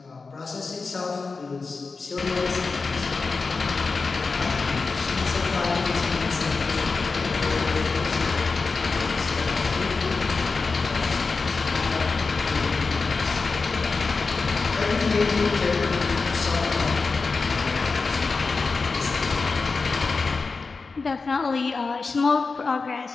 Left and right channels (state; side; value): quieter; right; 4.3 dB